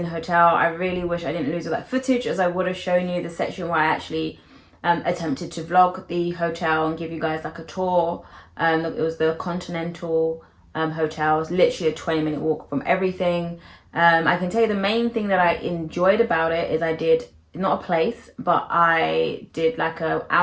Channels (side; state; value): both; identical; correlation 1.00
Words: hotel. I really wish I didn't lose all that footage, as I would have shown you the section where I actually attempted to vlog the hotel and give you guys like a tour. It was the Continental Hotel. It was literally a 20-minute walk from everything. I can tell you the main thing that I enjoyed about it is I did, not a place, but I did like an